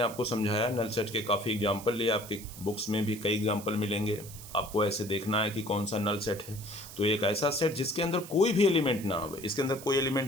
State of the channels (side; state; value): right; noise; hiss, 15 dB below the sound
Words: समझाया, नल सेट के काफ़ी एग्जाम्पल लिए, आपके बुक्स में भी कई एग्जाम्पल मिलेंगे। आपको ऐसे देखना है कि कौन सा नल सेट है। तो एक ऐसा सेट जिसके अंदर कोई भी एलिमेंट ना हो, इसके अंदर कोई